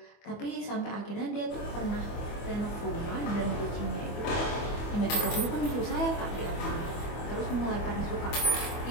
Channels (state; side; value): late; right; 24 ms